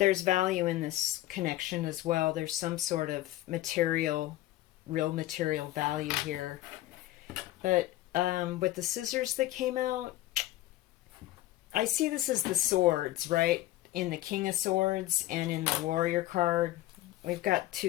value in this connection as well. There's some sort of material, real material value here. But with the scissors that came out, I see this as the swords, right? In the King of Swords and in the Warrior card. We've got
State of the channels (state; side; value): quieter; right; 15.8 dB